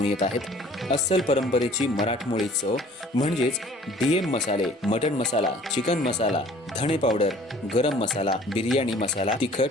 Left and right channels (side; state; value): both; normal; correlation 0.52